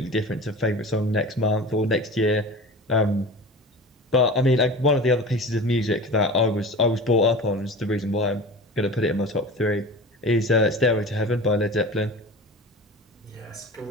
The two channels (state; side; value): normal; both; correlation 0.35